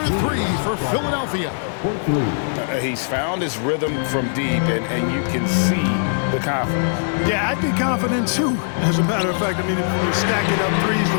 3 for Philadelphia. He's found his rhythm from deep, and you can see the confidence. Yeah, I'd be confident too. As a matter of fact, I mean, if you're stacking up threes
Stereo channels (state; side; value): silent; right; digital silence